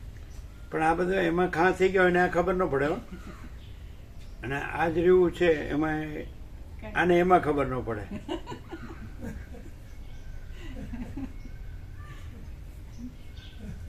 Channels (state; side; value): identical; both; correlation 1.00